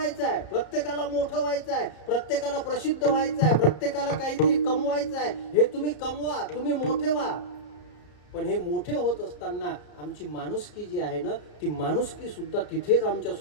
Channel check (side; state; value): right; late; 34 ms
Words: आहे. प्रत्येकाला मोठं व्हायचं आहे. प्रत्येकाला प्रसिद्ध व्हायचं आहे. प्रत्येकाला काहीतरी कमवायचं आहे. हे तुम्ही कमवा, तुम्ही मोठे व्हा. पण हे मोठे होत असताना आमची माणुसकी जी आहे ना, ती माणुसकी सुद्धा तिथेच आमच्या